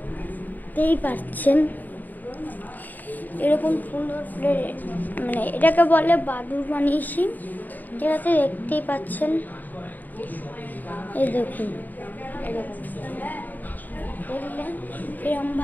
পাচ্ছেন। এরকম সুন্দর মানে এটাকে বলে বাদুড় বানিয়েছি। ঠিক আছে, দেখতেই পাচ্ছেন, এই দেখুন, এরকম দেখলেন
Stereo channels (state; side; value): late; right; 0.085 ms